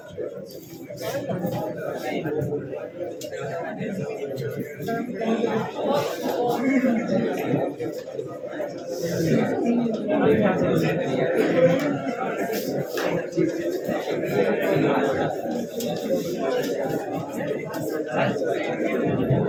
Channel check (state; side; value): identical; both; correlation 1.00